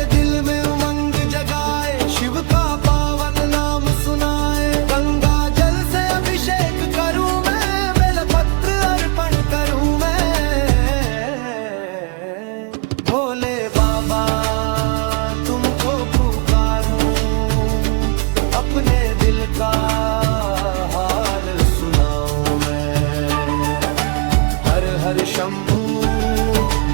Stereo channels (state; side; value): quieter; left; 32.1 dB